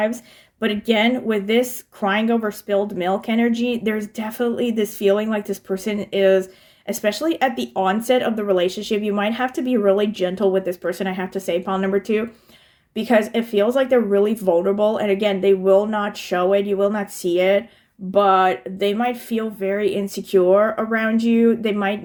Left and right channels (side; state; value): both; identical; correlation 1.00